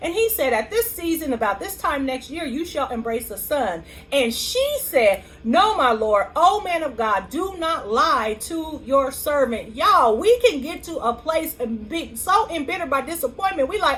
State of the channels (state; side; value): identical; both; correlation 1.00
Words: he said, at this season, about this time next year, you shall embrace a son. And she said, no, my Lord, O man of God, do not lie to your servant. Y'all, we can get to a place and be so embittered by disappointment. We